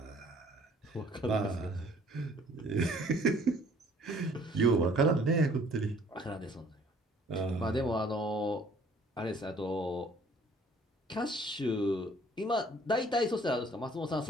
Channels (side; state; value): both; normal; correlation 0.57